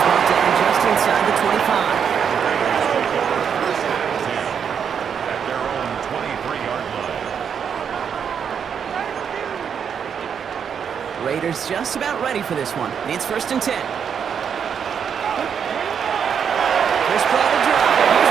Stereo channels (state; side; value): quieter; left; 7.4 dB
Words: brought down just inside the 25. At their own 23-yard line. Raiders just about ready for this one. It's 1st and 10. First play of the drive. Here's